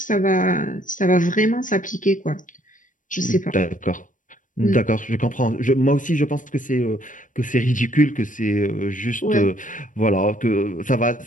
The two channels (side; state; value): right; late; 0.38 ms